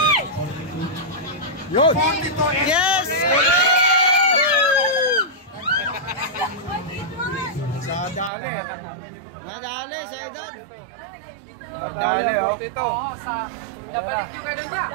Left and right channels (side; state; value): left; drops out; at 8.3 s